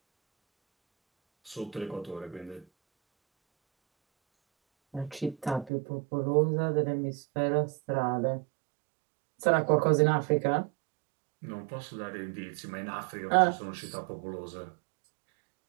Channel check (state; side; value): drops out; left; at 5.7 s